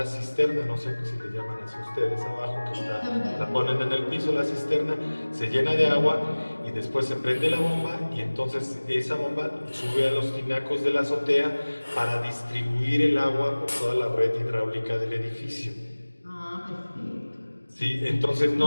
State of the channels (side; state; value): both; inverted; correlation -1.00